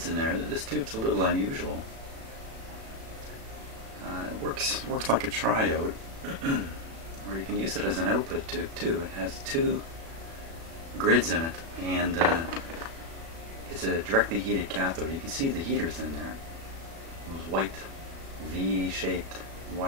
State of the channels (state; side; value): late; left; 36 ms